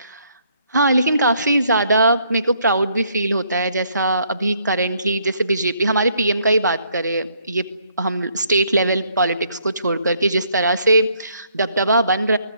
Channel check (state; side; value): inverted; both; correlation -0.68